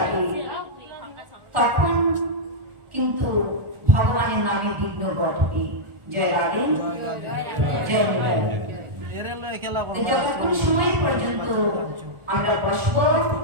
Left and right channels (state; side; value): late; left; 1.4 ms